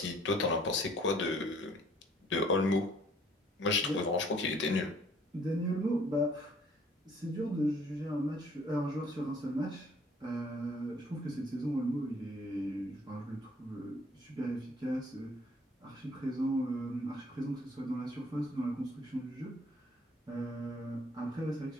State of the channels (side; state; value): both; normal; correlation 0.59